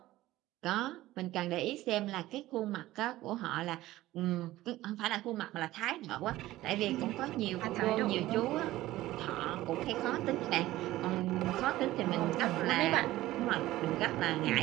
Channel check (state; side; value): quieter; left; 16.3 dB